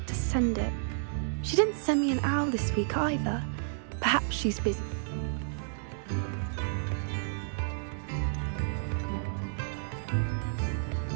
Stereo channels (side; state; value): left; silent; digital silence